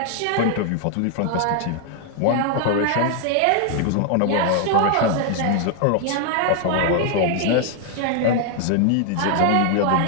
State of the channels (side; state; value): both; different; correlation 0.00